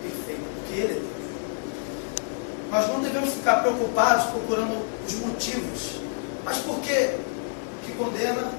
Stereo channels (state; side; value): silent; right; 60 dB below the other